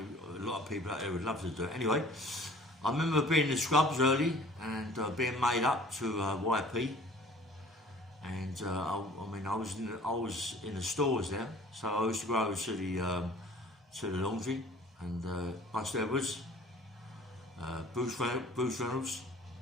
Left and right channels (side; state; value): both; normal; correlation 0.50